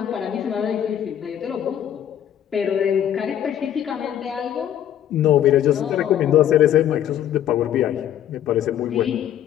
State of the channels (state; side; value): quieter; right; 10.6 dB